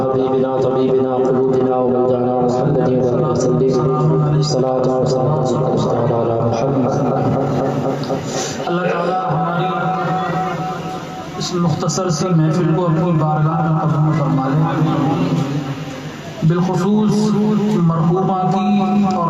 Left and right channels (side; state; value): both; identical; correlation 1.00